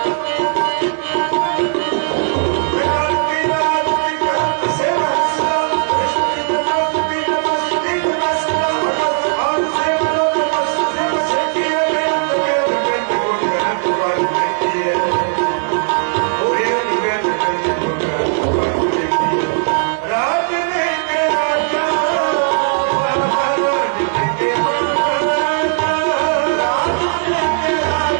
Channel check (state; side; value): silent; left; digital silence